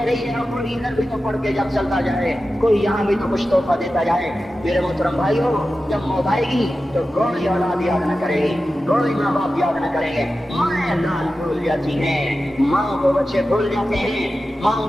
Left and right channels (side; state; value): both; normal; correlation 0.93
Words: رہی ہے کوئی ادھر بھی تو پڑھ کے جب چلتا جائے، کوئی یہاں بھی تو کچھ تحفہ دیتا جائے۔ میرے محترم بھائیو، جب موت آئے گی تو کوئی اولاد یاد نہ کرے گی، کوئی ماں باپ یاد نہ کریں گے، مائیں لال بھول جاتی ہیں، ماں کو بچے بھول جاتے ہیں، ماں